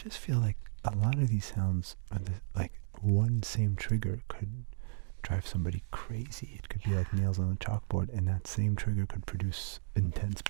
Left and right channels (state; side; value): silent; left; digital silence